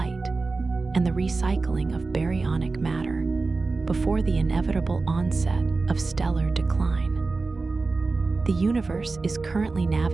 and the recycling of baryonic matter before the inevitable onset of stellar decline. The universe is currently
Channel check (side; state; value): left; quieter; 3.8 dB